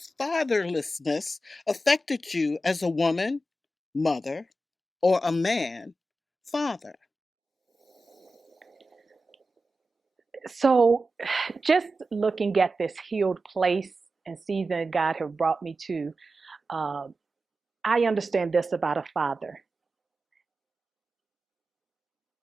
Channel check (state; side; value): normal; both; correlation 0.92